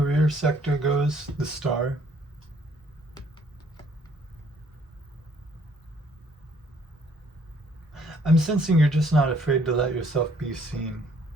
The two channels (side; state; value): both; normal; correlation 0.63